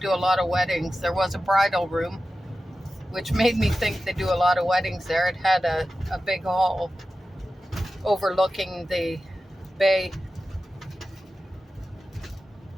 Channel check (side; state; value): both; normal; correlation 0.93